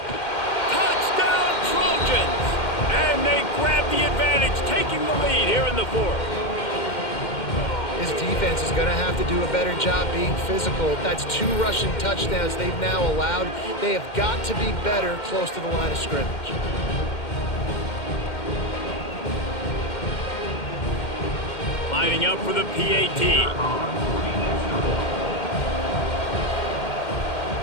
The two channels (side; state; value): right; late; 2.1 ms